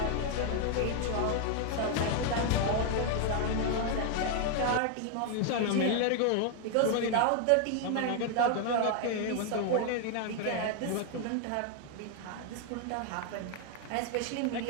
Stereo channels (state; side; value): different; both; correlation 0.00